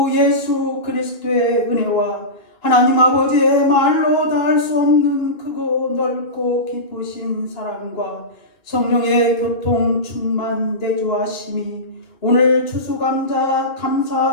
예수 그리스도의 은혜와 하나님 아버지의 말로 닿을 수 없는 크고 넓고 기쁘신 사랑과 성령의 교통 충만 내주하심이 오늘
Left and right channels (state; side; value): late; right; 2.8 ms